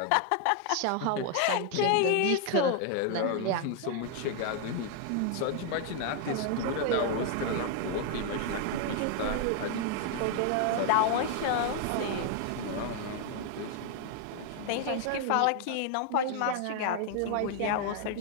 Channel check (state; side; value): different; both; correlation 0.00